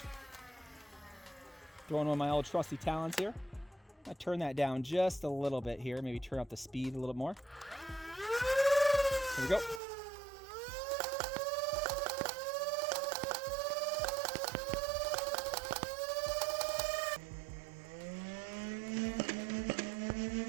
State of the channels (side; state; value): left; drops out; at 9.8 s